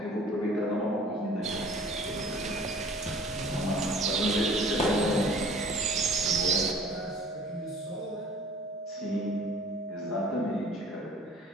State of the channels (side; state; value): both; normal; correlation 0.50